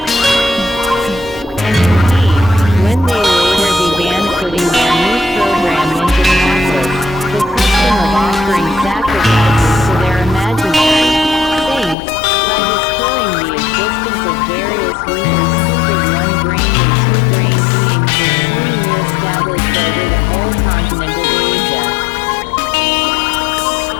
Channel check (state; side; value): drops out; right; at 12.0 s